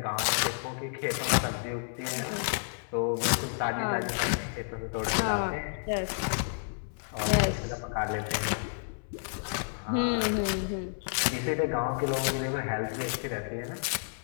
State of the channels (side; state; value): right; silent; 57 dB below the other